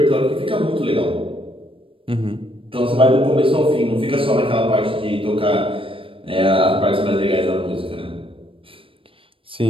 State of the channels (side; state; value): left; late; 0.26 ms